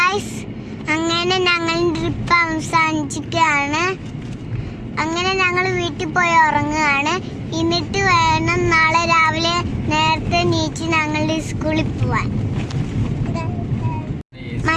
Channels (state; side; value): identical; both; correlation 1.00